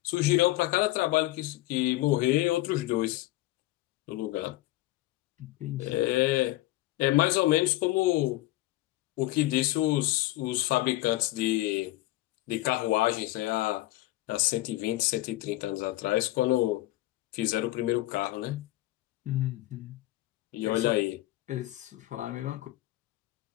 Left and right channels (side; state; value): right; quieter; 17.5 dB